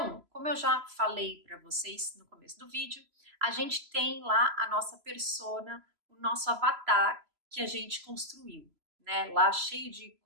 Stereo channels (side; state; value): left; late; 3.0 ms